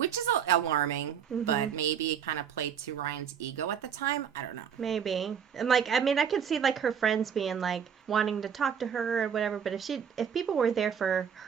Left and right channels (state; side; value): quieter; left; 7.8 dB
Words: is alarming, but maybe it kind of played to Ryan's ego at the time. I don't know. Maybe. And like, I mean, I could see like her friends being like wanting to talk to her or whatever, but if people were there for